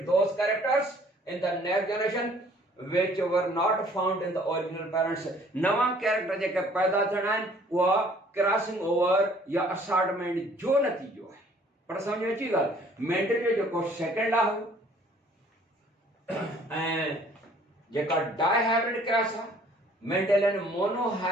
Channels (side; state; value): both; normal; correlation 0.57